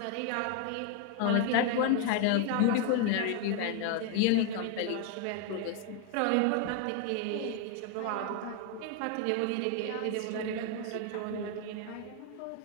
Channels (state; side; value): different; both; correlation 0.01